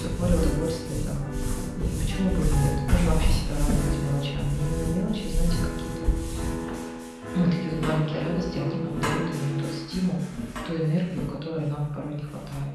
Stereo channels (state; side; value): identical; both; correlation 1.00